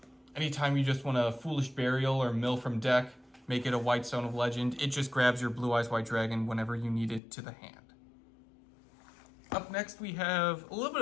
Anytime you just want a Foolish Burial or mill from deck, make it a White Stone of Legend. It just grabs your Blue Eyes White Dragon whenever you need it to the hand. Up next, we have a little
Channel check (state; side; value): drops out; right; at 7.2 s